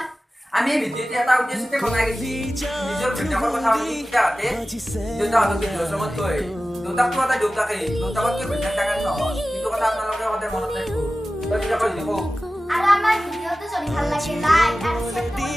আমি ভিডিঅ'টি এটা উদ্দেশ্যতে বনাই গৈছি নিজৰ ঘৈণীয়েকৰ কথা পাতি দেউতাহঁতে দেউতাহঁতক বৃদ্ধাশ্ৰমত থৈ দেউতাকটো এটা দেউতাকেই দেউতাকতকৈ ঘৈণীয়েক ডাঙৰ নহয় কিন্তু কথা আপোনালোকে সদায় মনত ৰাখিব দেউতাকৰ দেখো আৰু আমাৰ ভিডিঅ'টো যদি ভাল লাগে লাইক আৰু শেয়াৰ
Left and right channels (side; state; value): both; normal; correlation 0.95